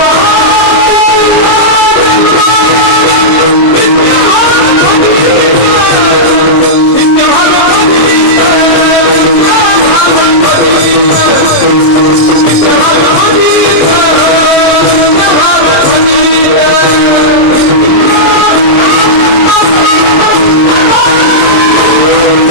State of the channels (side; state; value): right; late; 26 ms